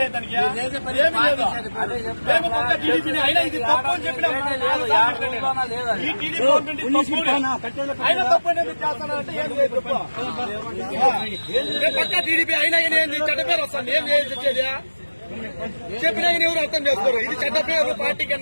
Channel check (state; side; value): inverted; both; correlation -1.00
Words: ఏమి లేదు. మేము పక్క టీడీపీని అయినా ఇది తప్పు అని చెప్పినా ఈ టీడీపీ గవర్నమెంట్ అయినా తప్పు అనేది చేస్తానంటే ఏం లేదు తప్పు. పక్క టీడీపీ అయినా ఏంది చెడ్డ పేరు వస్తుంది. ఏం చేసేది చెప్పినా ఎవరు అర్థం చేసుకోరు. ఇది చెడ్డ పేరు పార్టీ